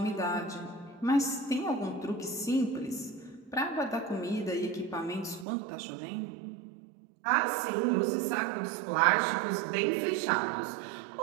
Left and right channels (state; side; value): drops out; left; at 5.5 s